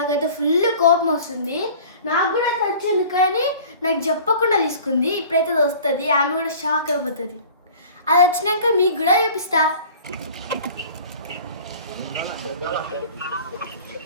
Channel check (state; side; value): inverted; both; correlation -0.45